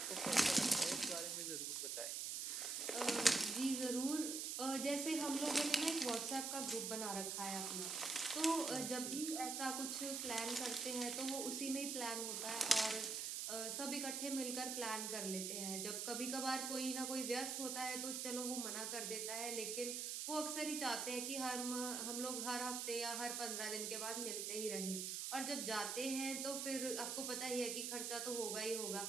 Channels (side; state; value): right; noise; hiss, 2 dB below the sound